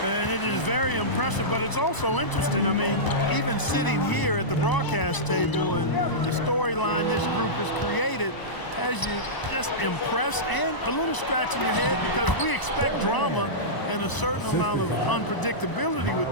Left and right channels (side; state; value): right; late; 1.0 ms